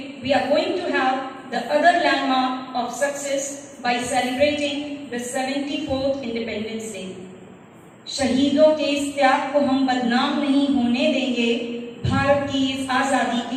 we are going to have the other landmark of success by celebrating the 74th Independence Day. शहीदों के इस त्याग को हम बदनाम नहीं होने देंगे, भारत की इस आजादी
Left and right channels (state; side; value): identical; both; correlation 1.00